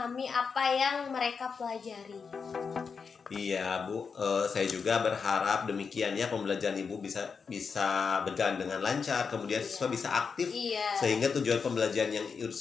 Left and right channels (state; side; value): quieter; right; 5.6 dB